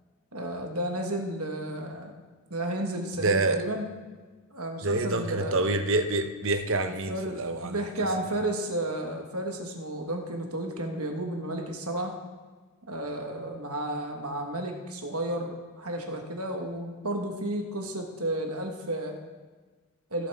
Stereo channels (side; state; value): both; normal; correlation -0.08